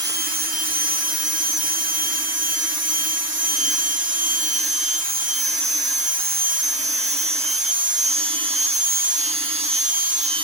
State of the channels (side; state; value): left; late; 6.7 ms